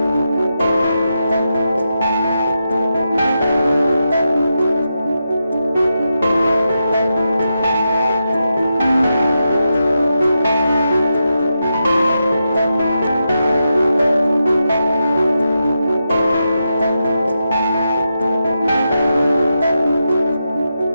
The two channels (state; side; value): inverted; both; correlation -0.87